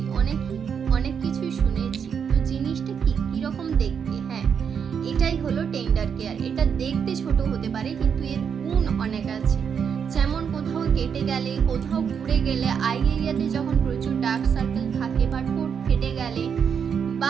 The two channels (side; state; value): left; quieter; 7.1 dB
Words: অনেক কিছুই শুনেছি, তো জিনিসটা কি, কিরকম দেখতে? হ্যাঁ, এটাই হলো টেন্ডার কেয়ার। এটা দেখতে ছোট হতে পারে কিন্তু এর গুণ অনেক আছে। যেমন কোথাও কেটে গেলে, কোথাও ঘুরে গেলে, আই এরিয়াতে যখন প্রচুর ডার্ক সার্কেল থাকে বা ঠোঁট ফেটে গেলে,